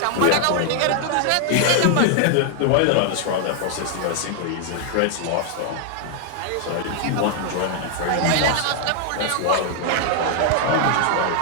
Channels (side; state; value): both; different; correlation 0.00